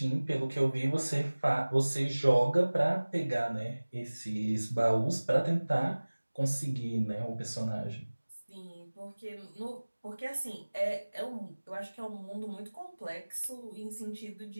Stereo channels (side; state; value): both; inverted; correlation -1.00